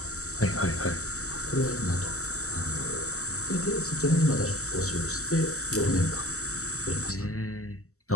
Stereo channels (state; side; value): late; right; 0.64 ms